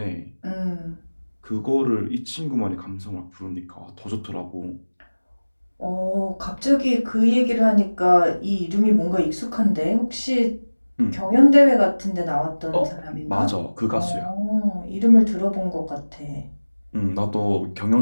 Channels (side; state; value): both; inverted; correlation -1.00